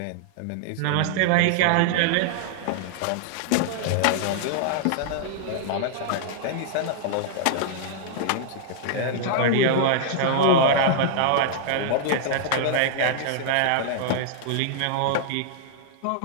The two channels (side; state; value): both; different; correlation -0.01